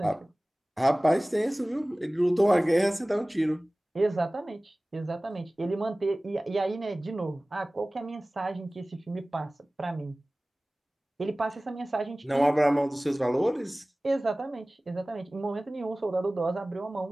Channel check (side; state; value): both; normal; correlation 0.98